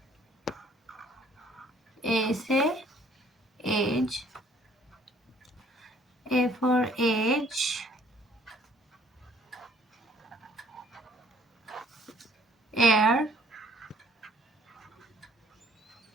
A say age. A for age. Air.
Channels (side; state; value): both; normal; correlation 0.60